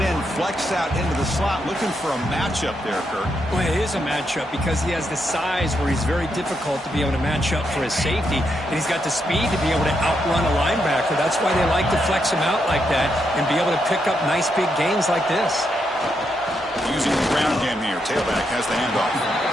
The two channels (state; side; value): normal; both; correlation 0.81